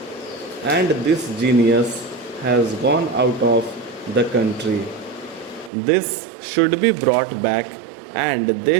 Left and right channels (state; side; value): drops out; left; at 5.7 s